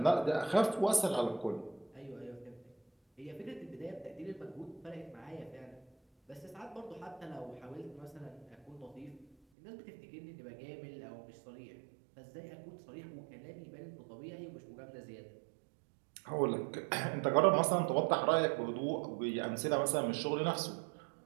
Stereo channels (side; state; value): left; drops out; at 9.3 s